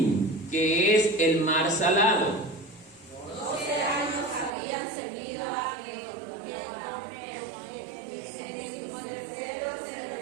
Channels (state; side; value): drops out; left; at 4.5 s